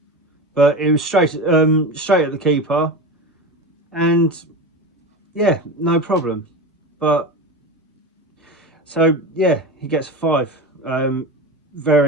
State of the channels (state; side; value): normal; both; correlation 0.26